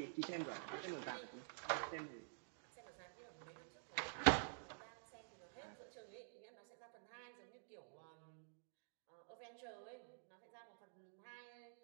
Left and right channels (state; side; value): silent; left; digital silence